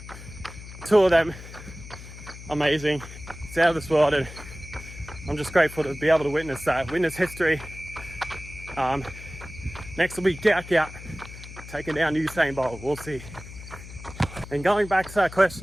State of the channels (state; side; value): noise; left; hum, 14 dB below the sound